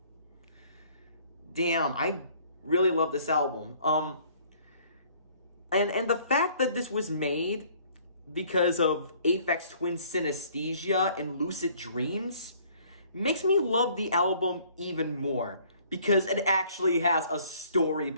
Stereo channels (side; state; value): both; inverted; correlation -0.58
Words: Damn, I really love this album. And the fact that this was made because of Aphex Twin synesthesia and lucid dreams makes me love the album even more, because it actually has a story